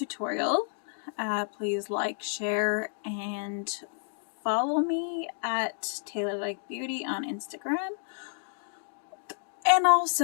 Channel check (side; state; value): right; silent; digital silence